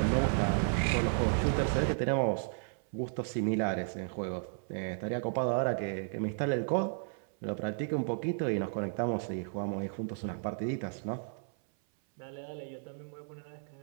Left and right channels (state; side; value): silent; left; 55 dB below the other